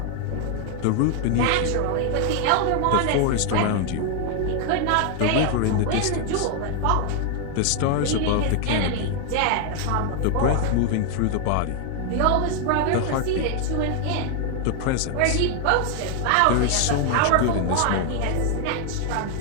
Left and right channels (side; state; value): both; different; correlation 0.00